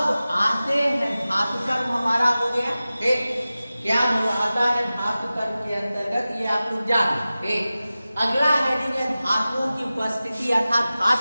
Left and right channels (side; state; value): both; inverted; correlation -0.96